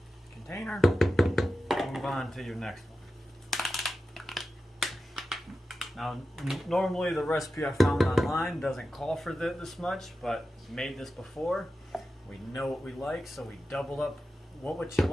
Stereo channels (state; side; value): normal; both; correlation 0.92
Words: container. Move on to your next one. Now, normally the recipe I found online doesn't call for this much, but made this before. We know what we like, so we doubled up what you